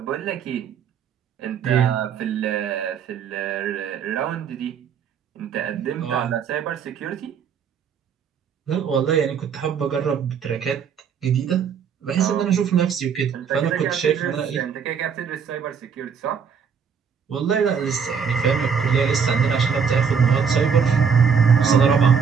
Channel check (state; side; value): quieter; left; 6.7 dB